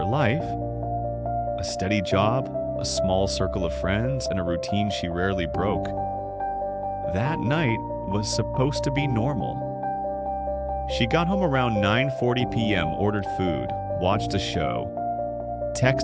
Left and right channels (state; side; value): identical; both; correlation 1.00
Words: life. A steady job, a small circle of friends, and a routine she rarely broke. That night was supposed to be normal. She got home around 9:40 p.m., ordered food, watched a show,